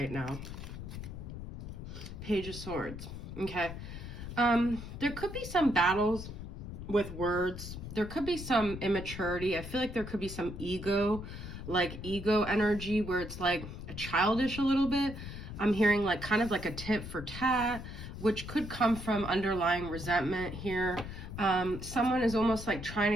now? Page of Swords, okay? There could be some battles with words. There could be some immaturity. I feel like there could be some ego energy where it's like childish a little bit. I'm hearing like kind of like a tit for tat, which could come from underlying resentment here. Someone is almost like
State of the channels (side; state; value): left; noise; rumble, 9 dB below the sound